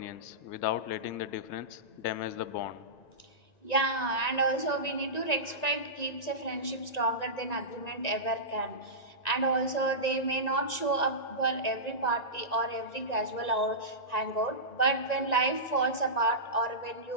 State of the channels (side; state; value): right; late; 1.9 ms